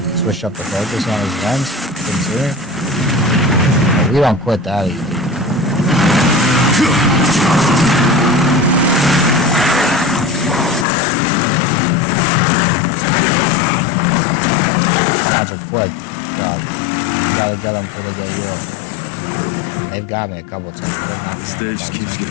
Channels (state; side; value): drops out; right; at 10.9 s